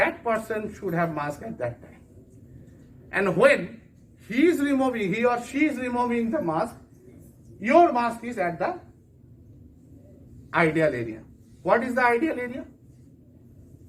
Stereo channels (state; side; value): identical; both; correlation 1.00